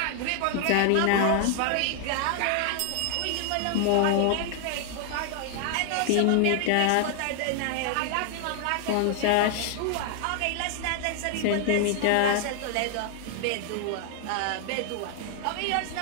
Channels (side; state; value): both; different; correlation 0.00